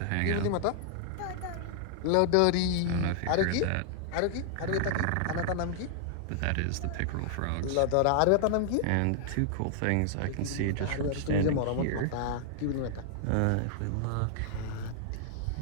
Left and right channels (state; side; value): different; both; correlation -0.01